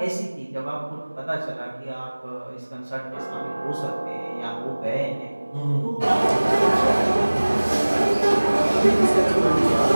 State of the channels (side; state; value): both; inverted; correlation -1.00